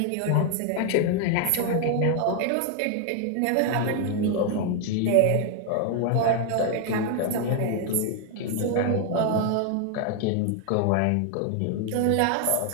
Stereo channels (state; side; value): different; both; correlation 0.01